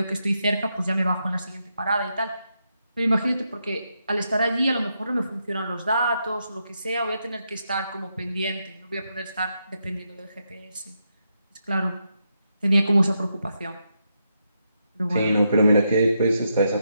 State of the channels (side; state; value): both; inverted; correlation -0.82